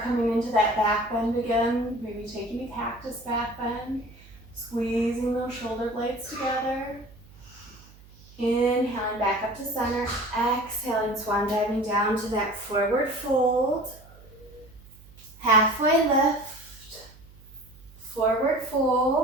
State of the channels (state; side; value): noise; right; hum, 23 dB below the sound